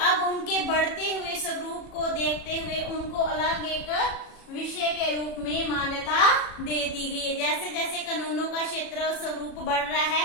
उनके बढ़ते हुए स्वरूप को देखते हुए उनको अलग एक विषय के रूप में मान्यता दे दी गई है। जैसे जैसे कानूनों का क्षेत्र स्वरूप बढ़ रहा है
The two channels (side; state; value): right; late; 37 ms